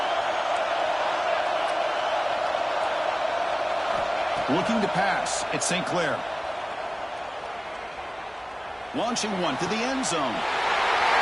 Looking to pass. It's St. Clair. Launching one to the end zone.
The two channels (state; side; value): identical; both; correlation 1.00